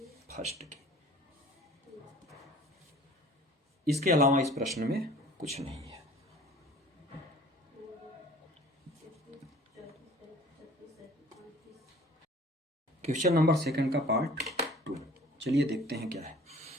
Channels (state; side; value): normal; both; correlation 0.48